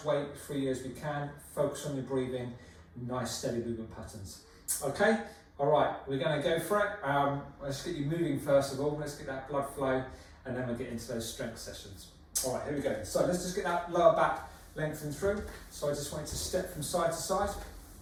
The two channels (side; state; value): both; identical; correlation 1.00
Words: weight free as we can. Focus on your breathing, nice steady movement patterns. Okay? All right, we're going to go for it. Let's get you moving first of all. Let's get that blood flow, and then we'll get into those strength sessions. All right, here we go. So let's just get that lower back lengthened through. So I just want you to step from side to side.